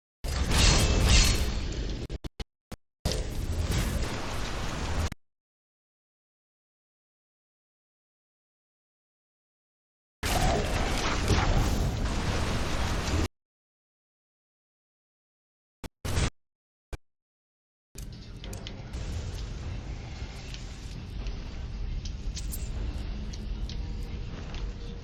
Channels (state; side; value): identical; both; correlation 1.00